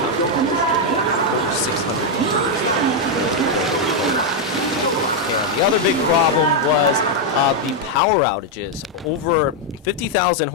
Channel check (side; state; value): both; normal; correlation 0.00